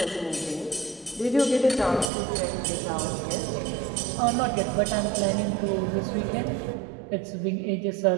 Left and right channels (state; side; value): drops out; left; at 2.1 s